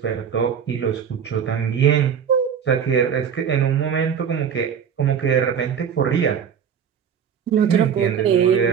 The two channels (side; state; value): left; quieter; 7.7 dB